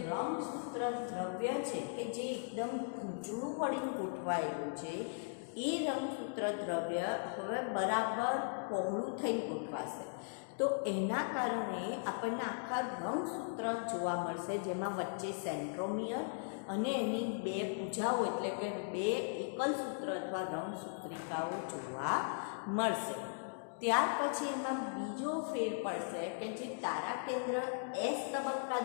રંગસૂત્ર દ્રવ્ય છે કે જે એકદમ ગૂંચળું પડીને ગોઠવાયેલું છે, એ રંગસૂત્ર દ્રવ્ય હવે બરાબર પહોળું થઈને ગોઠવાશે. તો એના કારણે આપણને આખા રંગસૂત્ર જોવા મળશે, જેમાં વચ્ચે સેન્ટ્રોમિયર અને એની બે ભુજાઓ એટલે કે બે એકલ સૂત્ર અથવા રંગસૂત્રિકાઓ જોવા મળશે. ત્યાર પછી એમાં બીજો ફેર પડશે કે જે તારા કેન્દ્ર એસ તબક્કા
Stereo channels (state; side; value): silent; right; digital silence